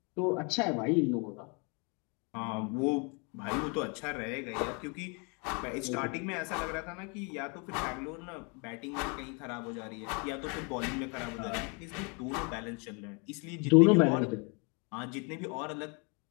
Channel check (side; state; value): right; quieter; 33.9 dB